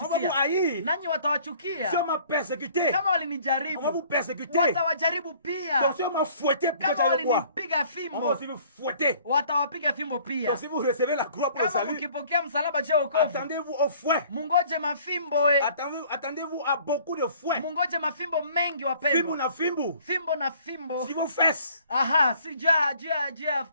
haïr. nanyi watawachukia. Si on m'a persécuté, Kama on va vous walinijaribu, persécuter. watawajaribu pia. Donc si on m'a fouetté, pourquoi Kama j'allais quoi? walinipiga On va fimbo, aussi vous fouetter. watawapiga fimbo pia. Donc si vous recevez la croix pour le Kama salut, mkipokea msalaba je wokovu, attendez-vous au fouet. mungoje mafimbo. Attendez-vous à beaucoup de fouets. Mungoje mafimbo mengi Fimbu wapendwa. na fimbu. Fimbo na fimbo. Si vos fesses. Si jia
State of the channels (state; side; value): inverted; both; correlation -0.55